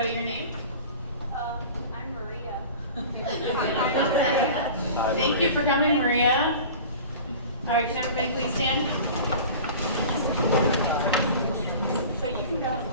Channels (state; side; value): inverted; both; correlation -0.39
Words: your name? I'm Maria. Thank you for coming, Maria. All right, can everybody please stand? So you can go ahead